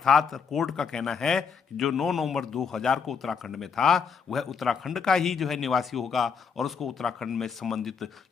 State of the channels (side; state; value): right; quieter; 6.1 dB